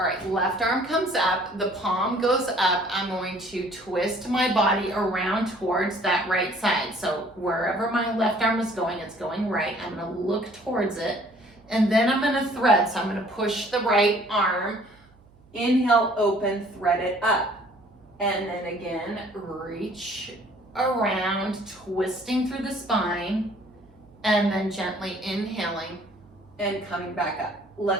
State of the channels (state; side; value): noise; right; hum, 28 dB below the sound